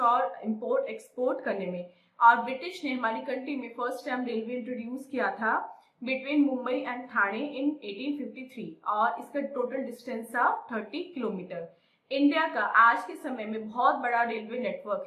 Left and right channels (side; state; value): both; identical; correlation 1.00